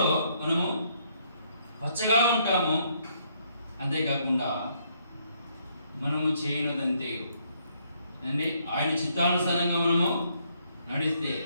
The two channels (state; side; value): inverted; both; correlation -0.71